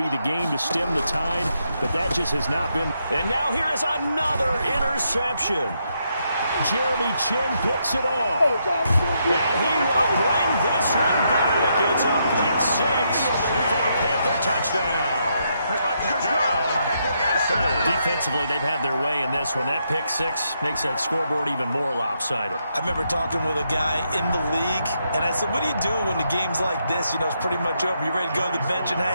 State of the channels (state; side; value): inverted; both; correlation -0.79